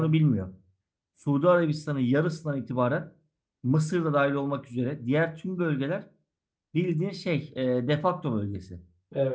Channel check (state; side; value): identical; both; correlation 1.00